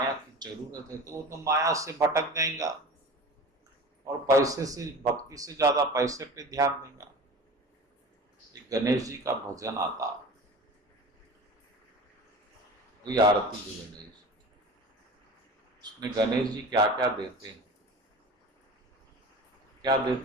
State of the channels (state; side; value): normal; both; correlation 0.36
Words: की जरूरत है, तो वो तो माया से भटक जाएगा और पैसे से, भक्ति से ज्यादा पैसे पे ध्यान देगा। एक गणेश जी का भजन आता, वही आरती जो गणेश, उसमें गणेश जी क्या क्या देते हैं, क्या